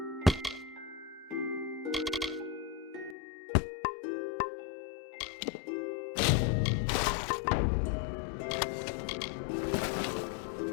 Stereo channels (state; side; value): drops out; right; at 3.2 s